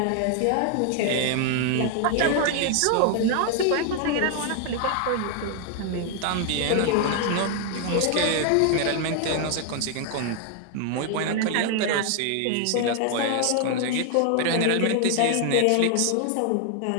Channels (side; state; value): both; different; correlation 0.00